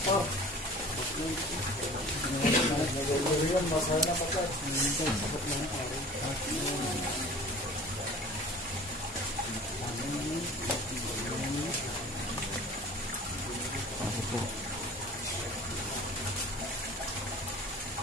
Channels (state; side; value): normal; both; correlation 0.43